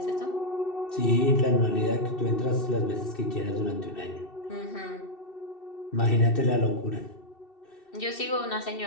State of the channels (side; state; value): right; late; 2.7 ms